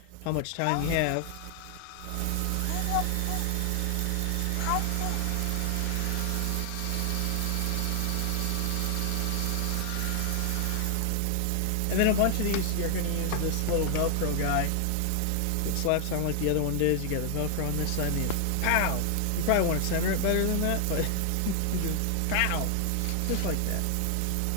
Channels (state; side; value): different; both; correlation 0.00